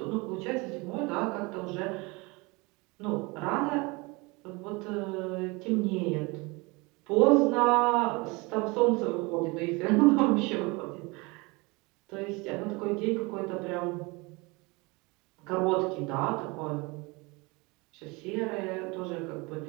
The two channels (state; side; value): quieter; left; 26.1 dB